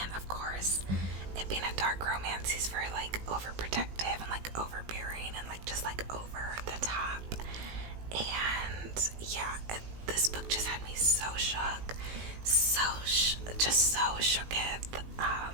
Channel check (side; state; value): left; late; 18 ms